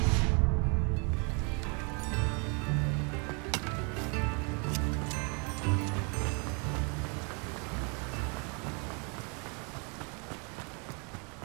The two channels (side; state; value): left; quieter; 34.7 dB